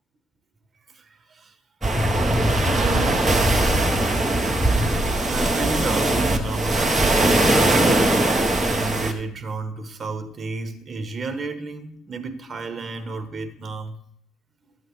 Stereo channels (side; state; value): both; normal; correlation 0.79